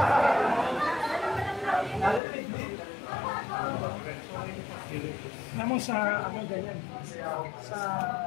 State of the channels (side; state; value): right; drops out; at 2.2 s